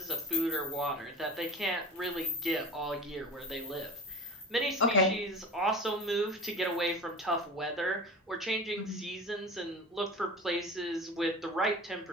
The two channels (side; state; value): both; normal; correlation 0.34